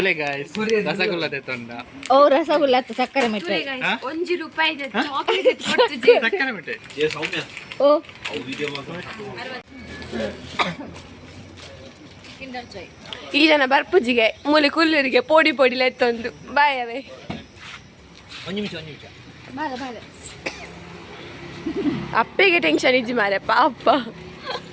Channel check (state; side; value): identical; both; correlation 1.00